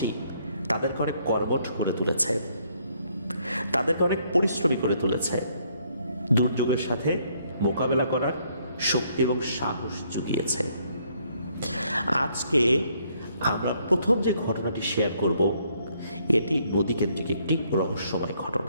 তাদেরকে অনেক কর্মঠ করে তুলেছে, তাদেরকে অনেক পরিশ্রমী করে তুলেছে, দুর্যোগের সাথে মোকাবেলা করার শক্তি এবং সাহস জুগিয়েছে। আজকে আমরা প্রথম যে ঘটনাটি শেয়ার করব, এটি নদীকেন্দ্রিক একটি রহস্যময়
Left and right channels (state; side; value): inverted; both; correlation -0.69